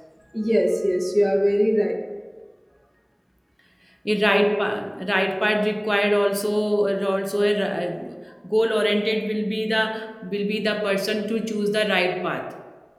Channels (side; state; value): both; identical; correlation 1.00